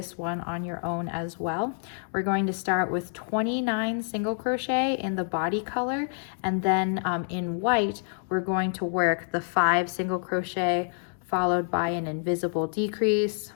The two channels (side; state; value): right; silent; 60 dB below the other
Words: one on your own as well. We're going to start with 29 single crochet in the body color, and then in white, we're going to work the 5 single crochet, followed by an invisible decrease,